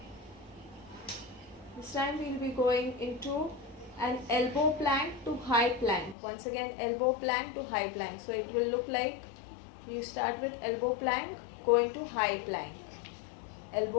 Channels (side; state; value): right; drops out; at 6.2 s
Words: This time we'll be going into an elbow plank to high plank. Once again, elbow plank to high plank. So it will look like you start with elbow plank, go into high plank.